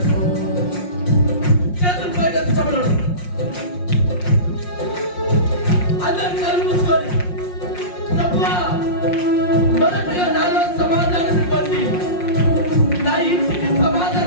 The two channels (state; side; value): late; right; 5.6 ms